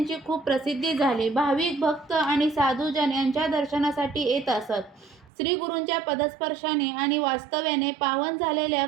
खूप प्रसिद्धी झाली. भाविक भक्त आणि साधुजन यांच्या दर्शनासाठी येत असत. श्री गुरूंच्या पदस्पर्शाने आणि वास्तव्याने पावन झालेल्या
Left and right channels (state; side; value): drops out; left; at 5.3 s